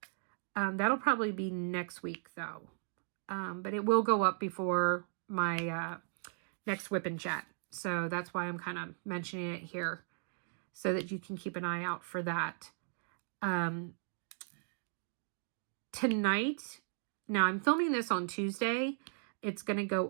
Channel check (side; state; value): left; silent; digital silence